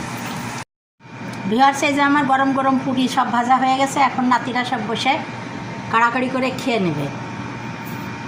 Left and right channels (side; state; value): both; identical; correlation 1.00